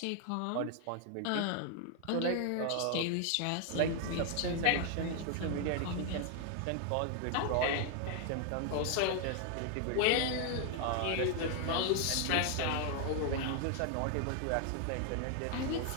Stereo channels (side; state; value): both; different; correlation 0.00